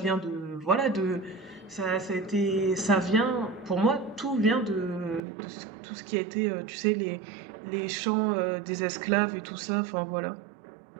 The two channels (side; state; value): left; drops out; at 5.2 s